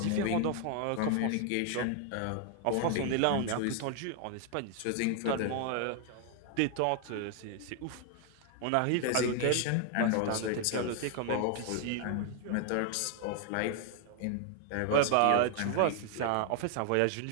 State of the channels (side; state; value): both; different; correlation 0.00